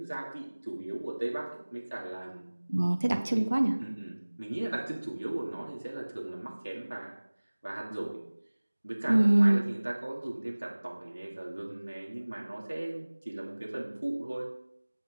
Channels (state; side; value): inverted; both; correlation -1.00